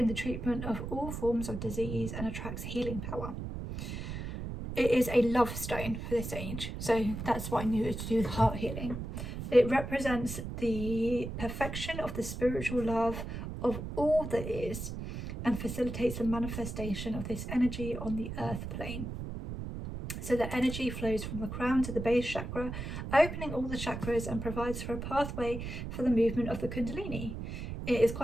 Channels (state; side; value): noise; right; rumble, 6 dB below the sound